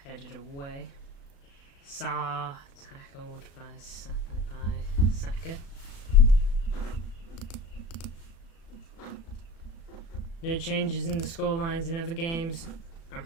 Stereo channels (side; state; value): right; late; 36 ms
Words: Headed away. Saar tackled by Saka. No changes in the scorelines in other games. I'm